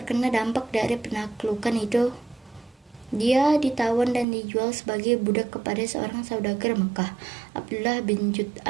dampak dari penaklukan itu. Dia ditawan dan dijual sebagai budak kepada seorang saudagar Mekah, Abdullah bin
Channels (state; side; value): drops out; left; at 4.2 s